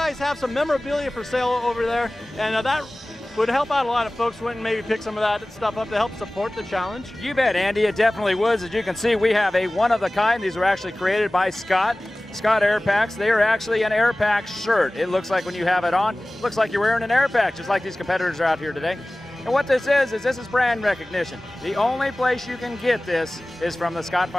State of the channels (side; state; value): both; normal; correlation 0.98